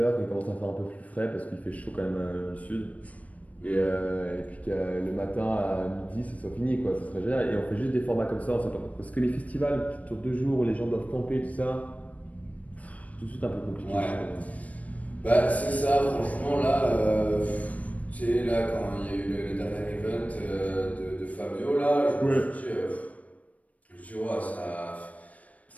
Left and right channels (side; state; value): right; late; 0.069 ms